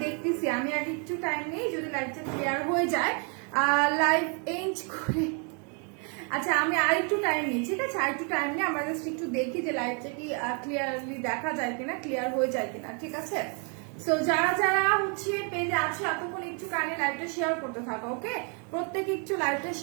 দেখতেছি। আমি আগে একটু টাইম নেই, যদি লাইভটা ক্লিয়ার হয়ে যায় লাইভ এন্ড করে। আচ্ছা, আমি আর একটু টাইম নিই, ঠিক আছে? আর একটু টাইম নিই, আমরা জাস্ট একটু দেখি যে লাইভটা কি ক্লিয়ারলি দেখা যায় কিনা, ক্লিয়ার হয়ে যায় কিনা, ঠিক আছে? সো যারা যারা পেজে আছো এতক্ষণ একটু কানে লাইভটা শেয়ার করতে থাকো। ওকে, প্রত্যেকে একটু লাইভটা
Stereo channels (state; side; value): quieter; left; 37.9 dB